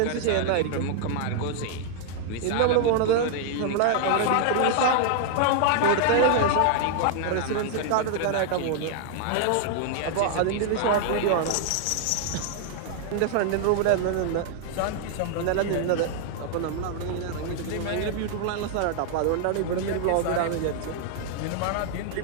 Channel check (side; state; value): both; different; correlation 0.00